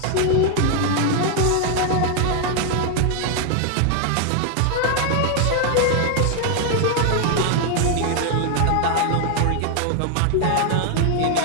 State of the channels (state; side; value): different; both; correlation 0.01